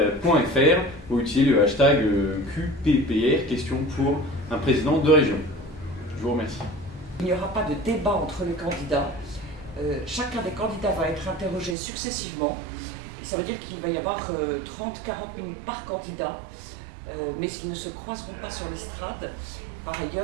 ou utiliser le hashtag QPPR, question pour un président de région. Je vous remercie. Il n'y aura pas de débat entre les candidats. Chacun des candidats va être interrogé successivement. Et ça veut dire qu'il va y avoir 30-40 minutes par candidat, mais ils ne se croiseront pas sur l'estrade. Par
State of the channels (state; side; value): drops out; left; at 11.8 s